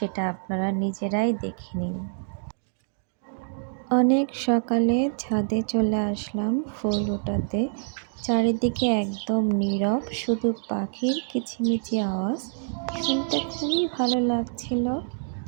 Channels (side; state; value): left; silent; digital silence